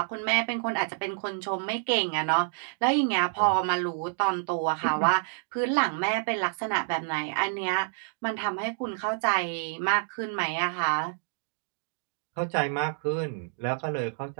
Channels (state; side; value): silent; left; 59 dB below the other